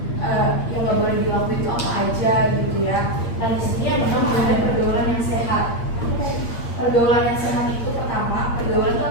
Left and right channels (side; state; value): right; late; 8.6 ms